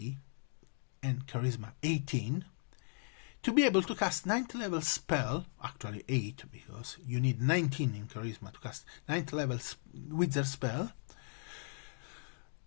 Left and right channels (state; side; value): silent; right; digital silence